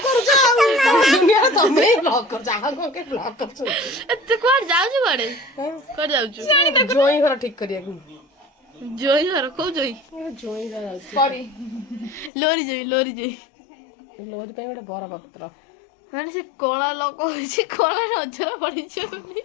କରୁଛ ଦୁନିଆରେ ତମେ ବ୍ଲଗ କରୁଛ ଆଉ କଣ କେ ବ୍ଲଗ କରୁଛ ତୁ କୁଆଡେ ଯାଉଛୁ କୁଆଡେ ଯାଉଛୁ ଜୋଇଁ ଘର ଠିକ କରିବାକୁ ଜୋଇଁ ଘର କୋଉ ଜୋଇଁ ଜୋଇଁ ଘର ଲୋରି ଜୋଇଁ ଲୋରି ପାଇଁ ଗୋଟେ ବର ପତ୍ର ମାନେ ସେ କଳା ଲୋକ ହେଇଛି କଳା ନଜର ପଡିଛି ବୋଲି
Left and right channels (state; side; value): drops out; right; at 12.3 s